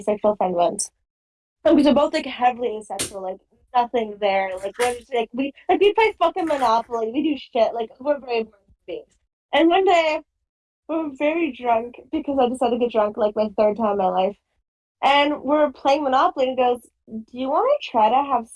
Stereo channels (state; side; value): identical; both; correlation 1.00